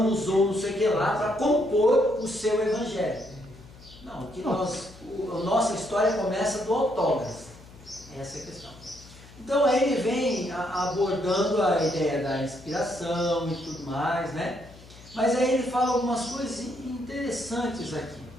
usou não sei o que lá para compor o seu evangelho. Não, a nossa história começa do autógrafo. Essa é a questão. Então aí ele vem abordando a ideia da inspiração e tudo mais, né? Mas aí ele fala algumas coisas interessantes aqui.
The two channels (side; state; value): left; noise; hum, 21 dB below the sound